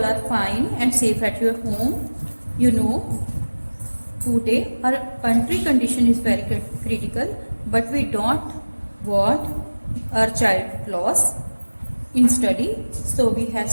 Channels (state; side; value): inverted; both; correlation -1.00